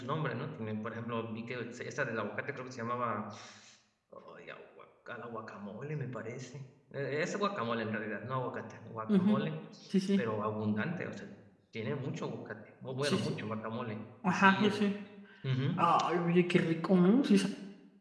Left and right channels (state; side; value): identical; both; correlation 1.00